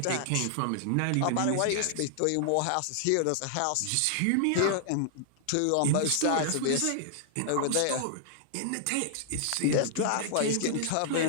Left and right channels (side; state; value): both; different; correlation 0.00